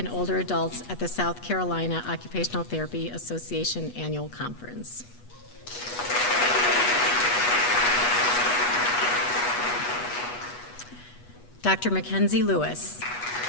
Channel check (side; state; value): right; late; 8.2 ms